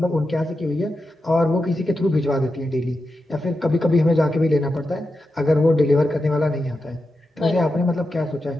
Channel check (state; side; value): normal; both; correlation 0.89